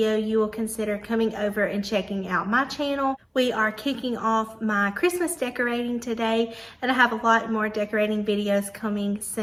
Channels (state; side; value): identical; both; correlation 1.00